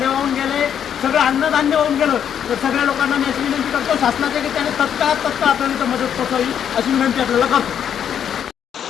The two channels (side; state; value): right; quieter; 8.8 dB